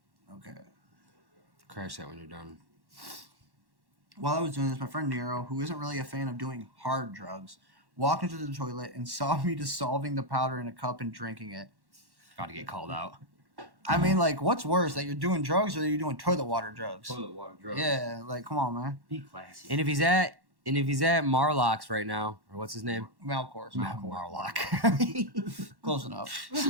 Okay. Crash that when you're done. While I was doing this, my friend Nero, who isn't really a fan of doing hard drugs, walked into the toilet and saw me dissolving the powder in a cup and drinking it. Got to get called out. I mean, like, what's worse, that you're doing drugs or that you're doing toilet water drugs? Toilet water drugs. Yeah, like, come on, man. Be classy. And if he's at Marlock's right now, or what's his name? Malcor's. Marlock. Close enough.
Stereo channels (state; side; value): late; left; 1.1 ms